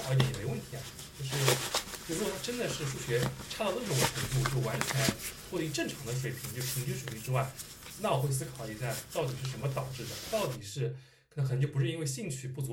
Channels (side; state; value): both; identical; correlation 1.00